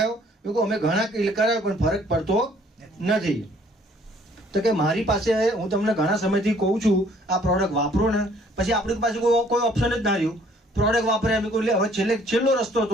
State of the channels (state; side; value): normal; both; correlation 0.60